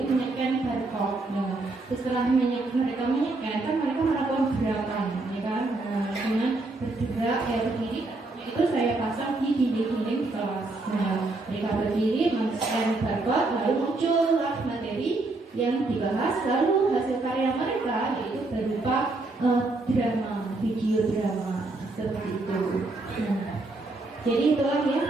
menyekan barcode. Nah, setelah mereka menyekan, kan mereka melakukan gerakan, ya kan? Nah, dengan bergerak berdiri, itu saya pasang di dinding-dinding kelas. Nah, mereka berdiri, men-scan barcode, lalu muncullah materi yang dibahas, lalu hasil karya mereka yaitu berupa drama, video drama, seperti itu. Nah, jadi itulah ya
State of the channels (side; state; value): left; quieter; 3.2 dB